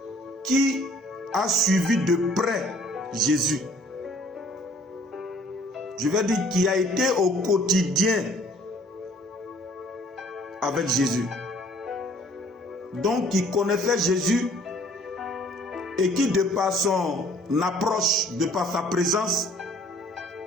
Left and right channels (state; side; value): normal; both; correlation 0.57